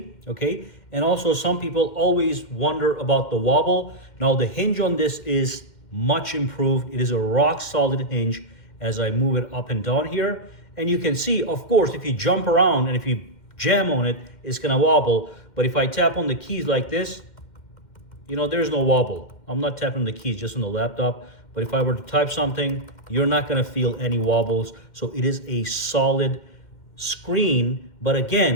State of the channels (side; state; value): right; late; 2.1 ms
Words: okay? And also some people always wonder about the wobble. Now, the hinge on this is much improved. It is a rock solid hinge as I move it up and down here. And you can see, of course, if you jump around and if you jam on it, it's gonna wobble. But if I tap on the keys like this, you know, there's no wobble. I'm not tapping the keys just on the laptop. But if I were to type something, you're not gonna feel any wobbles. So it is a solid screen. But